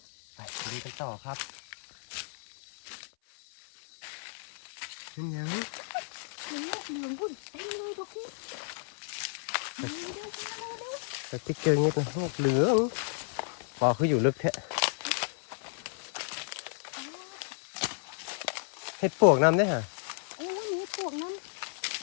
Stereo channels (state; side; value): silent; right; 56 dB below the other